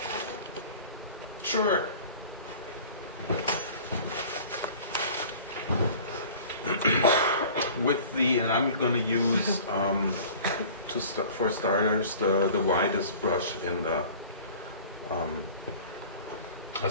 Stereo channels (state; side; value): inverted; both; correlation -0.44